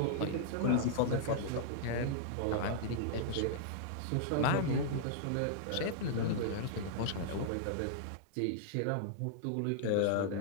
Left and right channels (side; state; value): both; different; correlation -0.02